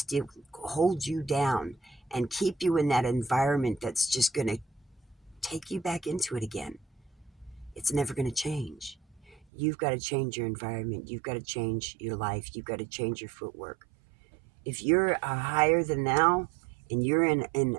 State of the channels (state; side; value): drops out; left; at 9.5 s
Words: hold you down and keep you in that environment that's just going to take you back into it again, it's never going to change. You've got to change your environment. You've got to change your life. You've got to change your footwork. If you're a higher than thou, and you're in